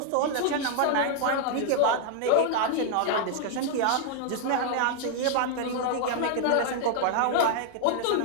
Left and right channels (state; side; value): different; both; correlation 0.00